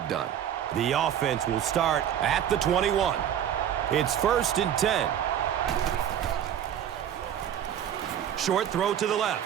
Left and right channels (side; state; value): left; quieter; 9.9 dB